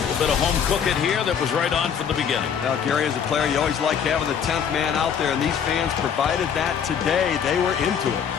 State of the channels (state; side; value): quieter; right; 7.6 dB